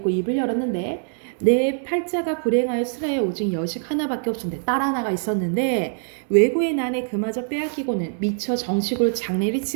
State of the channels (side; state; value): left; silent; digital silence